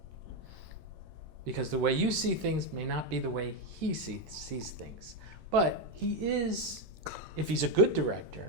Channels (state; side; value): late; left; 9.9 ms